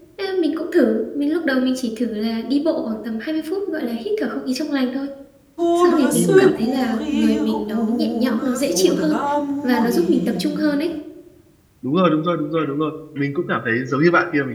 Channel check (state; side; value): identical; both; correlation 1.00